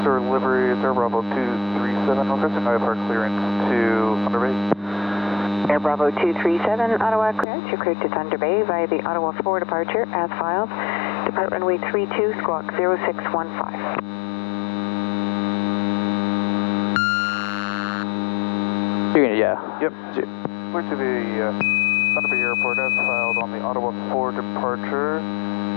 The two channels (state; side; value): drops out; right; at 7.5 s